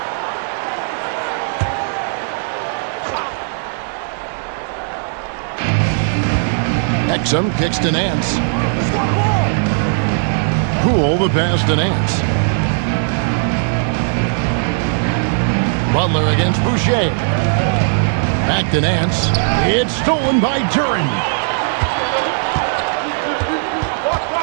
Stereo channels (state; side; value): silent; left; digital silence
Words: Exum kicks to Nance. Poole the pass to Nance. Butler against Boucher. Back to Nance. It's stolen by Duren.